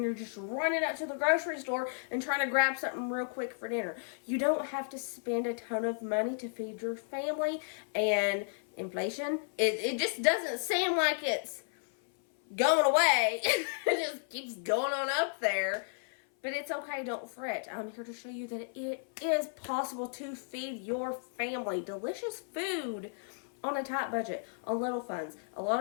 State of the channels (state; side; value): silent; right; 56 dB below the other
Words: you're just running out to the grocery store and trying to grab something real quick for dinner. You don't have to spend a ton of money to feed your family, and inflation, it just doesn't seem like it's going away. It just keeps going on up there. But it's okay, don't fret. I'm here to show you that it is possible to feed your family delicious food on a tight budget, on little funds. A lot